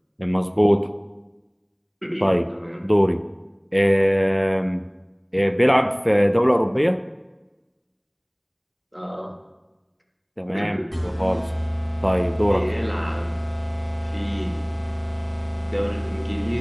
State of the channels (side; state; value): both; identical; correlation 1.00